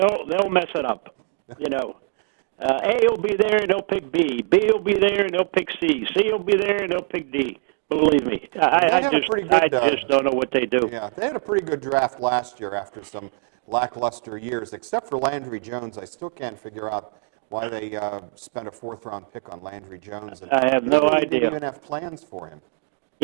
mess it up. A will be there and they'll pick B. B will be there and they'll pick C. C will be there and they'll pick D. Believe me. I just don't know what they do. Yeah, they had a pretty good draft last year after some lackluster years, except for Landry Jones. I still can't figure out why they spent a 4th-round pick on Landry Jones. And I have no idea. They didn't even have plans for him.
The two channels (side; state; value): left; silent; digital silence